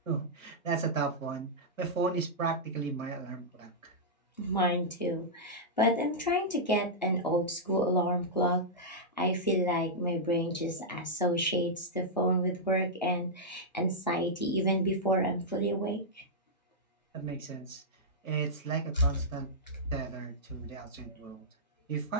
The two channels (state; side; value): normal; both; correlation -0.09